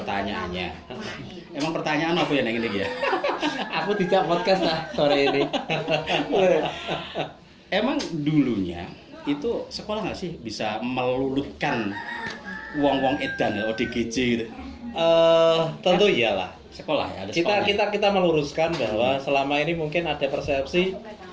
Emang pertanyaan apa ya yang ini ya? Aku tidak podcast lah sore ini. Emang dulunya itu sekolah nggak sih bisa melulutkan wong-wong edan ODGJ gitu? Tentu iyalah. Sekolah ya, ada sekolah. Kita meluruskan bahwa selama ini mungkin ada persepsi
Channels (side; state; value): both; identical; correlation 1.00